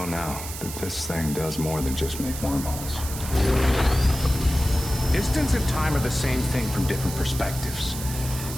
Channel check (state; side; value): noise; right; hiss, 9 dB below the sound